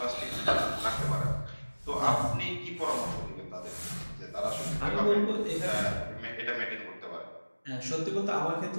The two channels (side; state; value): both; inverted; correlation -1.00